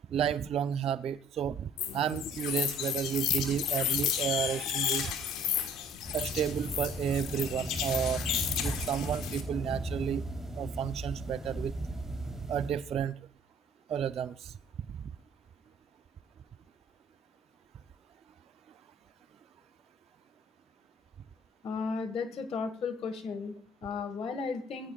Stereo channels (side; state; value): both; normal; correlation 0.55